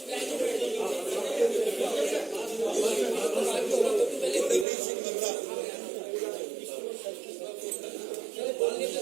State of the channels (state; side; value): drops out; left; at 4.7 s